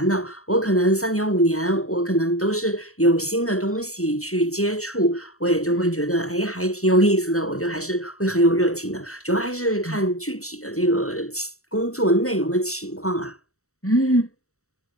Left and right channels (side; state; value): right; late; 0.64 ms